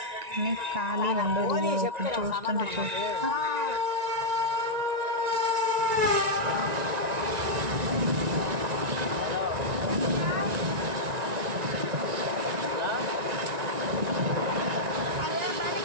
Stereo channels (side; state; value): left; late; 1.9 ms